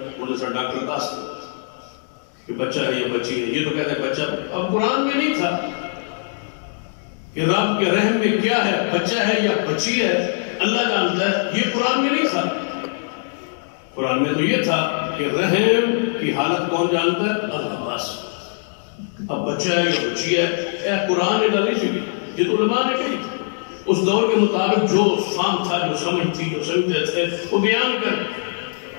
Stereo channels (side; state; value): right; silent; digital silence